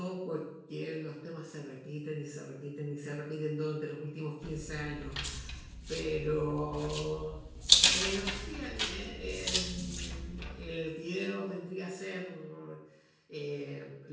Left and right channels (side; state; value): both; identical; correlation 1.00